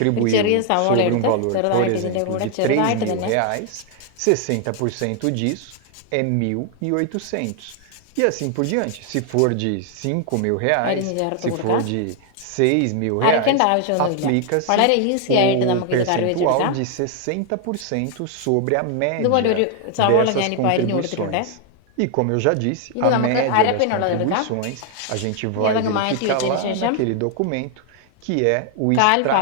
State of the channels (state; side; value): different; both; correlation 0.00